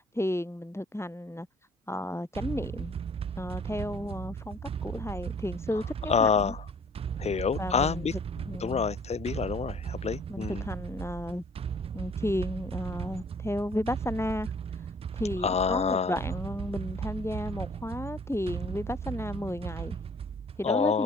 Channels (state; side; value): normal; both; correlation 0.56